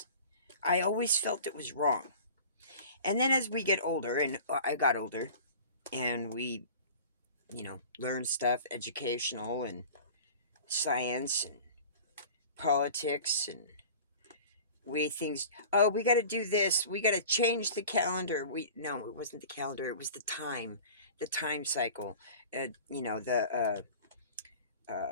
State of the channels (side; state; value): both; inverted; correlation -0.41